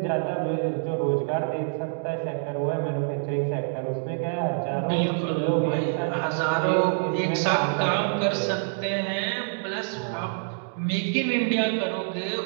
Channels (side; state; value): left; silent; digital silence